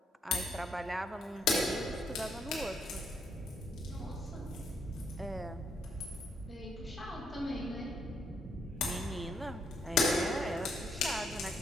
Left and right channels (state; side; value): normal; both; correlation 0.74